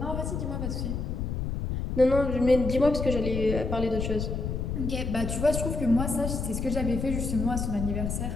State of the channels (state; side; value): noise; left; rumble, 3 dB below the sound